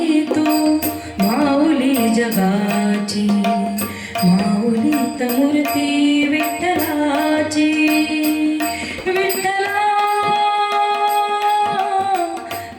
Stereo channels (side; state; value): both; identical; correlation 1.00